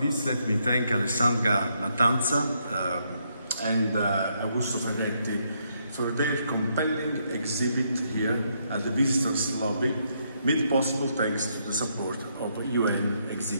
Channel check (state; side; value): inverted; both; correlation -0.76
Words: least, let me thank Alessandra Mattanza and Augusto Ferretti for their compelling exhibit here at the Visitors Lobby, made possible thanks to the support of the UN